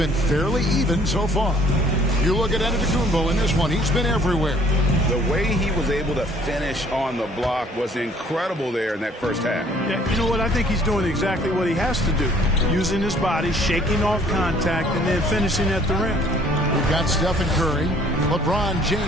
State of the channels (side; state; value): both; normal; correlation 0.58